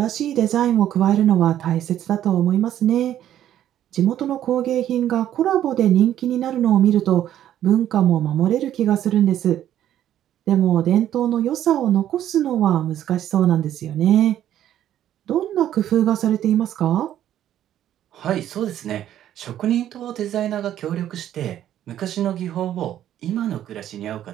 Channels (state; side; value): quieter; left; 11.4 dB